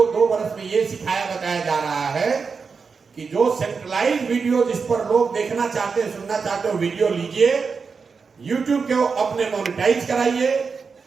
2 वर्ष में ये सिखाया बताया जा रहा है कि जो सेंट्रलाइज वीडियो जिस पर लोग देखना चाहते हैं, सुनना चाहते हो, वीडियो लीजिए, यूट्यूब के अपने मोनेटाइज कराइए,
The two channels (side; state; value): left; quieter; 5.2 dB